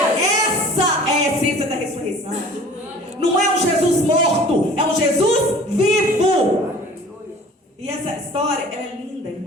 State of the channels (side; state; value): both; normal; correlation 0.47